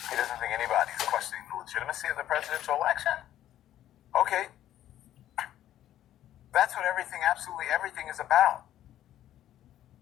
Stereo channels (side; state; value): right; quieter; 12.3 dB